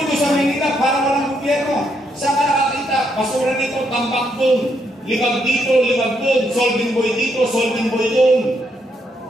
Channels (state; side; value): normal; both; correlation 0.76